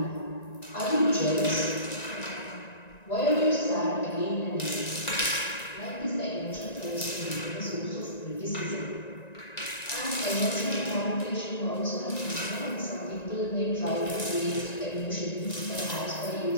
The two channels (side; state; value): right; late; 1.9 ms